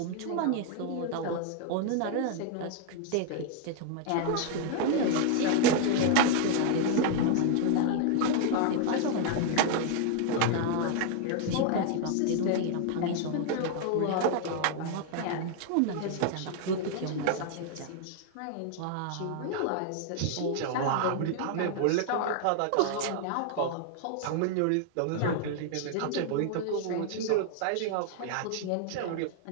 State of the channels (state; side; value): different; both; correlation 0.00